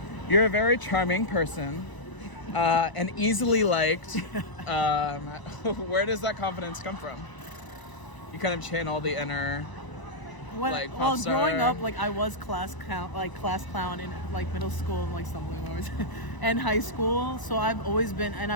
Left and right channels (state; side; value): late; right; 1.0 ms